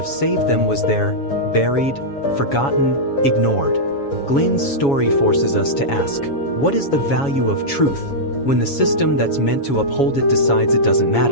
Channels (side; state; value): right; late; 7.2 ms